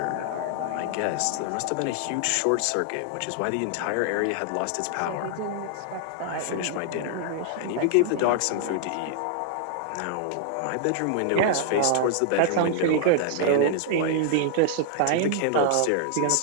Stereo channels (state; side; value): different; both; correlation -0.01